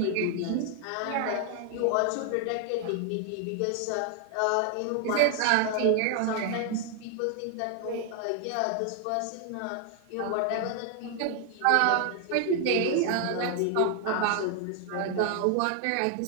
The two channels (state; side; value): different; both; correlation 0.00